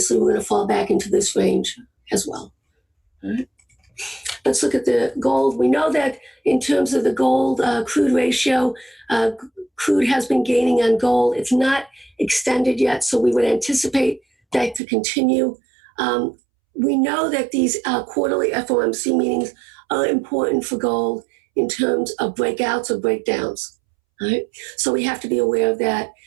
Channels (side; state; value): left; drops out; at 14.8 s